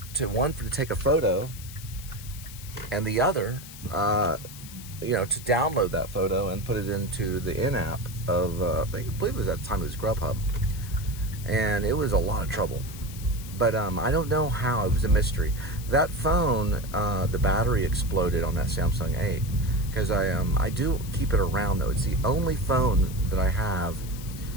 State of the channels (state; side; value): noise; left; hiss, 15 dB below the sound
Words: to take a photo, and the other, to download that photo and put it into the in-app of, I believe it was at the time it was Grubhub. And it was a lot of trouble. But I don't know how, it was a mystery. That phone, the battery exploded on that Samsung 8. Because I do keep it around, though. It's the only phone that I have.